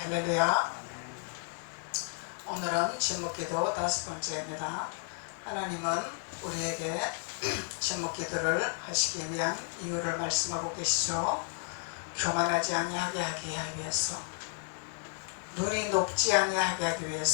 할렐루야. 오늘은 제목기도 5번째입니다. 하나님은 우리에게 제목기도를 하시기 위한 이유를 말씀하고 계시죠. 교만하지 아니하게 하기 위해서, 눈이 높지 아니하게 하기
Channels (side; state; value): right; silent; 56 dB below the other